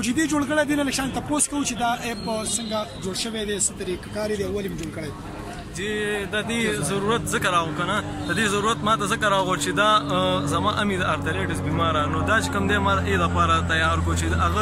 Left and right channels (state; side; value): identical; both; correlation 1.00